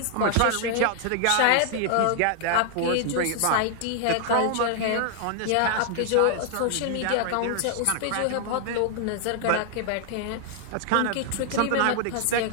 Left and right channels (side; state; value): both; different; correlation 0.00